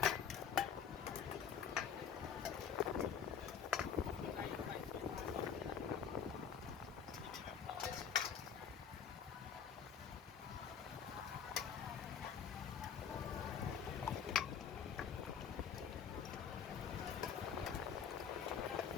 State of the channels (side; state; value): right; quieter; 7.6 dB